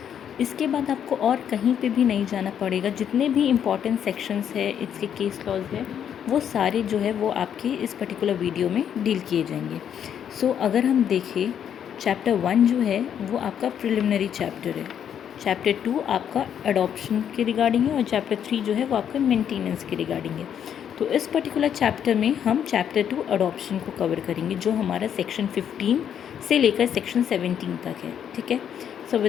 इसके बाद आपको और कहीं पे भी नहीं जाना पड़ेगा। जितने भी इम्पॉर्टेंट सेक्शंस है, इसके केस लॉज है, वो सारे जो है वो आपके इस पर्टिकुलर वीडियो में डील किए जाएंगे। सो अगर हम देखें, चैप्टर 1 जो है वो आपका प्रिलिमिनरी चैप्टर है, चैप्टर 2 आपका अडॉप्शन के रिगार्डिंग है और चैप्टर 3 जो है वो आपका मेंटेनेंस के रिगार्डिंग है। तो इस पर्टिकुलर चैप्टर में हम चैप्टर 2 अडॉप्शन को कवर करेंगे जो हमारा सेक्शन 15 से लेकर सेक्शन 17 तक है। ठीक है, सो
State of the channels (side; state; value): right; quieter; 8.9 dB